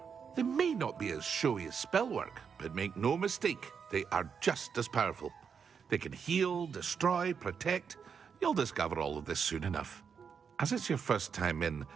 They may not be as showy as spellwork, but make no mistake, they are just as powerful. They can heal, destroy, protect. You'll discover all of this soon enough. As it's your first time in,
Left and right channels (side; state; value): left; quieter; 6.5 dB